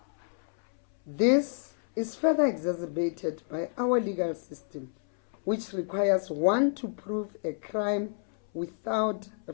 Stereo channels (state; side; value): silent; right; 58 dB below the other